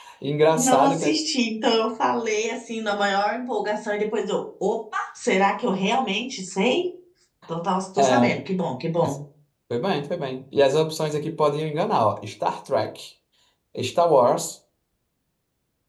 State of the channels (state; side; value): identical; both; correlation 1.00